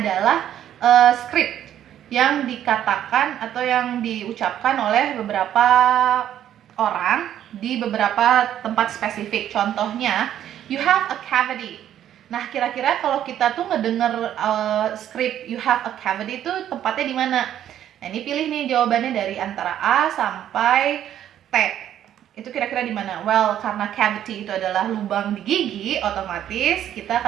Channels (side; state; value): left; quieter; 10.9 dB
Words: script yang dikatakan atau yang diucapkan oleh beberapa orang di beberapa tempat spesifik. Contohnya, you have a cavity. Nah, kira-kira kalau kita tuh ngedenger script you have a cavity itu tempatnya di mana? Nah, ini pilih nih jawabannya dari antara A sampai T. Itu kira-kira di mana? Well, karena cavity itu adalah lubang di gigi, otomatis kita